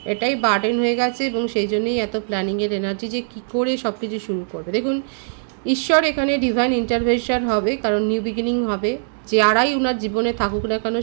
এটাই বার্ডেন হয়ে গেছে এবং সেই জন্যই এত প্ল্যানিংয়ের এনার্জি যে কী করে সব কিছু শুরু করবে। দেখুন ঈশ্বর এখানে ডিভাইন ইন্টারভেনশন হবে, কারণ নিউ বিগিনিং হবে। যারাই ওনার জীবনে থাকুক না কেন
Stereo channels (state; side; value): silent; left; digital silence